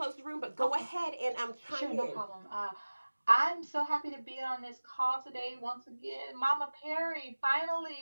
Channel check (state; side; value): inverted; both; correlation -1.00